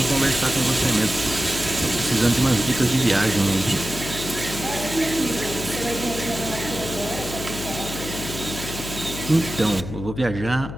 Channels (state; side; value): noise; left; hum, 9 dB below the sound